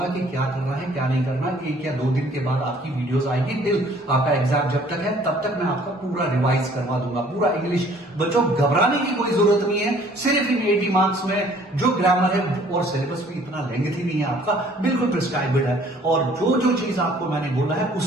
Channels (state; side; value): normal; both; correlation 0.57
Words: कि क्या करना है क्या नहीं करना। 1 या 2 दिन के बाद आपकी वीडियोस आएगी, टिल आपका एग्जाम जब तक है तब तक मैं आपका पूरा रिवाइज करवा दूंगा, पूरा इंग्लिश। बच्चों घबराने की कोई जरूरत नहीं है, सिर्फ इन 80 मार्क्स में जो ग्रामर है और सिलेबस भी इतना लेंथी नहीं है आपका, बिल्कुल प्रिस्क्राइब्ड है। और जो चीज आपको मैंने बोला है